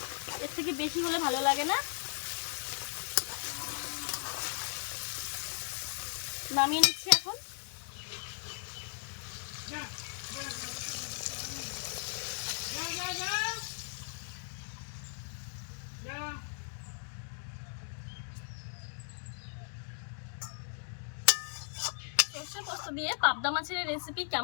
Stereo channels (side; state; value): right; silent; digital silence